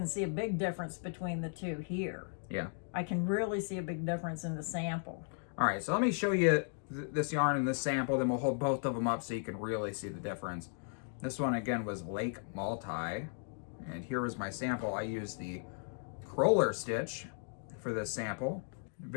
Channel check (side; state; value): right; silent; 54 dB below the other